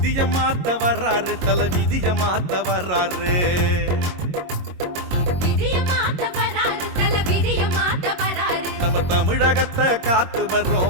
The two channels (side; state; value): left; late; 22 ms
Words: விதிய மாத்த வர்றாரு, தல விதிய மாத்த வர்றாரு. நம்ம தமிழகத்தை காத்து